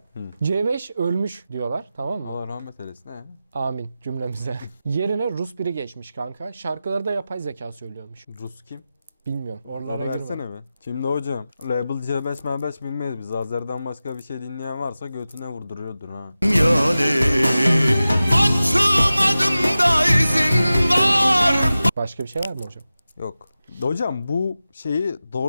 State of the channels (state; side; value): inverted; both; correlation -0.94